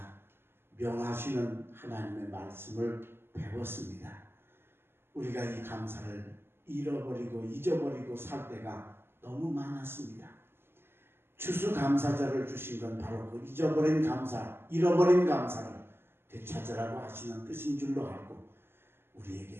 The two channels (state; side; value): late; left; 0.11 ms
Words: 명하시는 하나님의 말씀을 배웠습니다. 우리가 이 감사를 잃어버리고 잊어버리고 살 때가 너무 많았습니다. 추수감사절을 주신 건 바로 그 잊어버린 감사, 잃어버린 감사를 되찾으라고 하시는 뜻인 줄로 알고